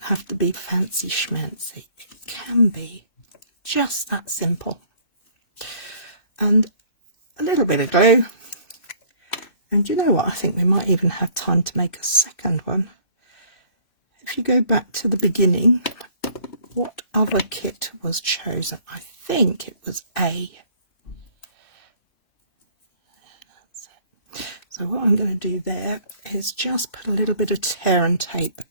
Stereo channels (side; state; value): right; late; 2.6 ms